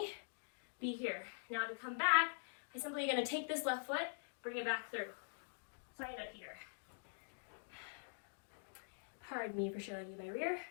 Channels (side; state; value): right; silent; digital silence